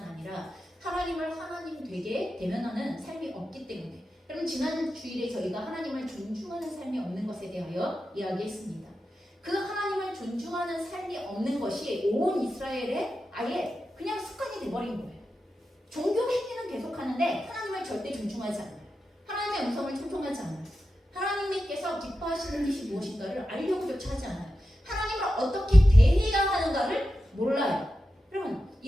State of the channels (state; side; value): normal; both; correlation 0.91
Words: 아니라 하나님을 하나님 되게 대면하는 삶이 없기 때문에, 여러분, 지난 주일에 저희가 하나님을 존중하는 삶이 없는 것에 대하여 이야기했습니다. 그 하나님을 존중하는 삶이 없는 것이 온 이스라엘에 아예 그냥 습관이 돼버린 거예요. 종교 행위는 계속하는데 하나님을 절대 존중하지 않아요. 하나님의 음성을 청종하지 않아요. 하나님께서 기뻐하시는 것이 무엇인가를 알려고조차 하지 않아요. 하나님을 어떻게 대해야 하는가를 몰라요. 여러분,